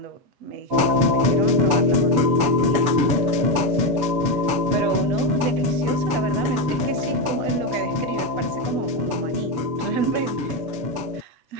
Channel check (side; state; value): left; late; 7.1 ms